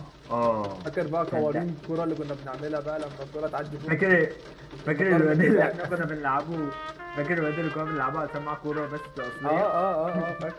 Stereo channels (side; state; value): both; identical; correlation 1.00